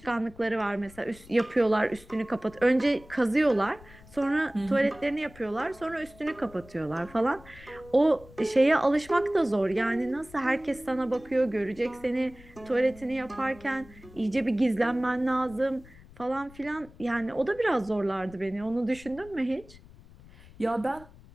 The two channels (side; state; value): left; noise; rumble, 22 dB below the sound